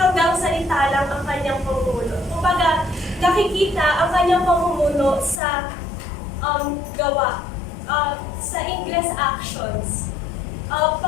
salita lang ang kanyang pamumuno. Kumbaga, nakikita ang kanyang pamumuno sa gawa, sa English actions.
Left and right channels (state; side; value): drops out; right; at 5.4 s